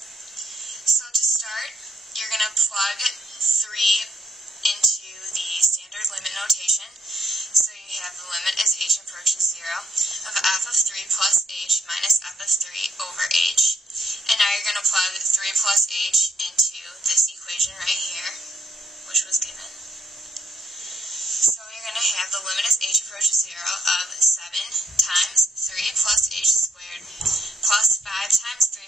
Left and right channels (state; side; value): normal; both; correlation 0.73